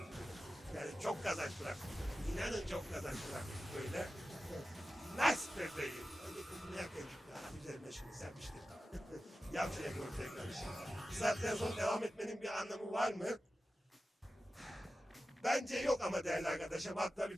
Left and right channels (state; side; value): normal; both; correlation 0.93